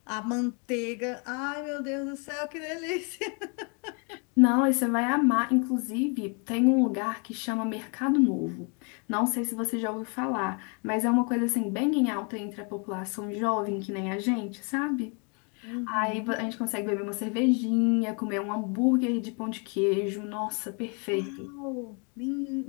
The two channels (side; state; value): right; quieter; 35.7 dB